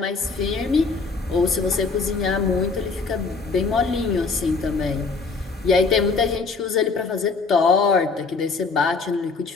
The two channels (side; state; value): right; quieter; 4.3 dB